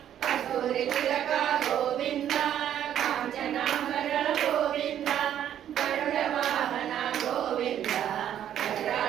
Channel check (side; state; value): left; quieter; 10.5 dB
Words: कस्तूरि तिलक गोविन्द काञ्चनाम्बर गोविन्द गरुडवाहन गोविन्द